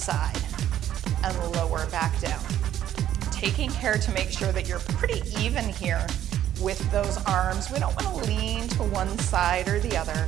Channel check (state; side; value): quieter; left; 11.4 dB